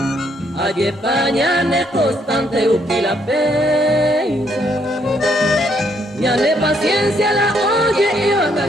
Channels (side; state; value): both; normal; correlation 0.71